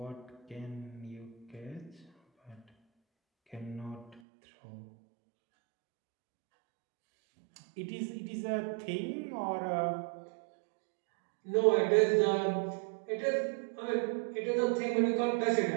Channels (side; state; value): left; drops out; at 4.2 s